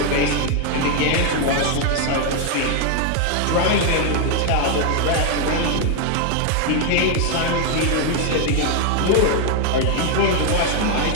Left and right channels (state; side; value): different; both; correlation 0.01